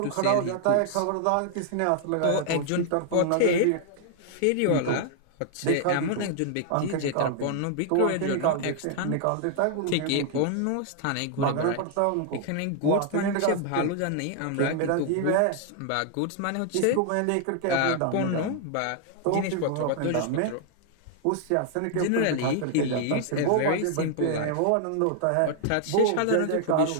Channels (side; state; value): both; different; correlation 0.00